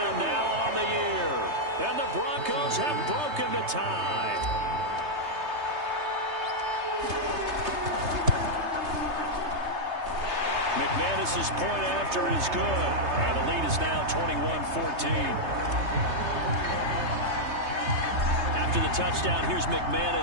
now on the year. And the Broncos have broken the tie. McManus's point after is good. And the lead is now 21-14. After the touchdown, here's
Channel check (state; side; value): late; left; 3.3 ms